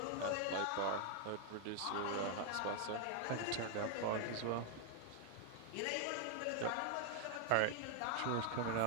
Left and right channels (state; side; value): different; both; correlation 0.00